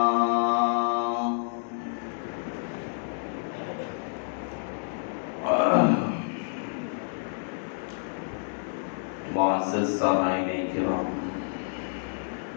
معزز سامعین کرام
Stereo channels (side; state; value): right; silent; digital silence